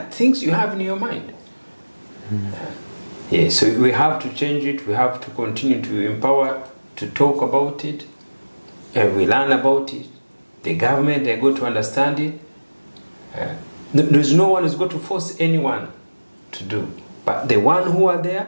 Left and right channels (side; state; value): both; inverted; correlation -1.00